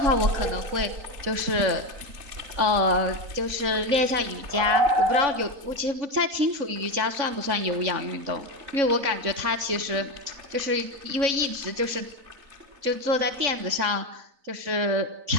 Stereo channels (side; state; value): left; late; 3.6 ms